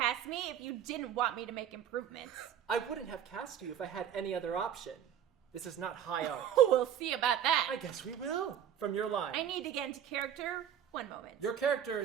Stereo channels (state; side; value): quieter; left; 9.4 dB